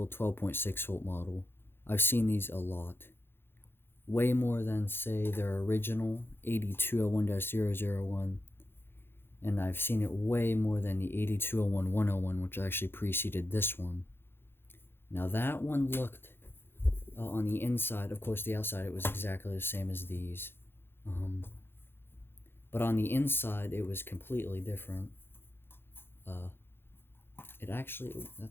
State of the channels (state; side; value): late; right; 0.11 ms